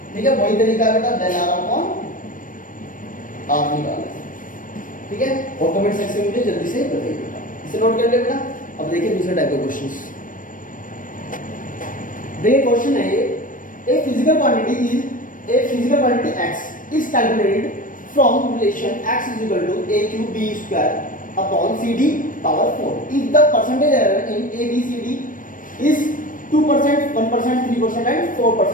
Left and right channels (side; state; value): right; late; 0.39 ms